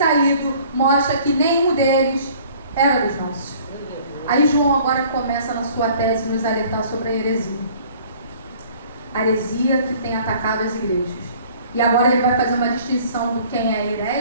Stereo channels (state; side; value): inverted; both; correlation -0.53